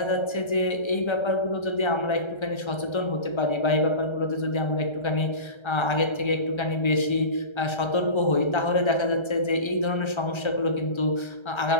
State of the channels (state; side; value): late; right; 1.3 ms